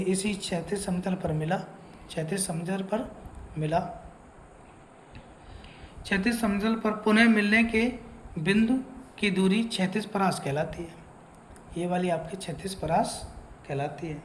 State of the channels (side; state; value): both; identical; correlation 1.00